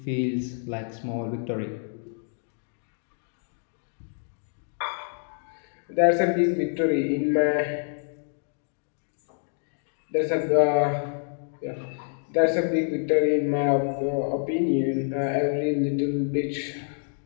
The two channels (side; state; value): right; silent; 59 dB below the other